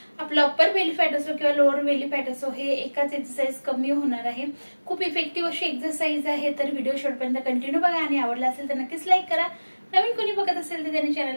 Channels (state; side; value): inverted; both; correlation -1.00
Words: आपलं अप्पर बेली फॅट असो किंवा लोअर बेली फॅट असो हे एकाच एक्सरसाइज कमी होणार आहे। खूप इफेक्टिव्ह अशी एक्सरसाइज आहे। तर व्हिडिओ शेवटपर्यंत कंटिन्यू बघा आणि आवडला असेल तर नक्कीच लाईक करा। नवीन कोणी बघत असेल तर त्यांनी